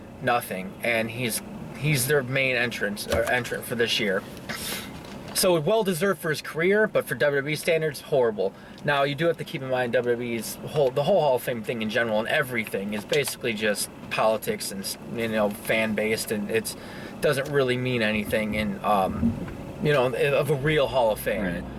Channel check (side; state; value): both; identical; correlation 1.00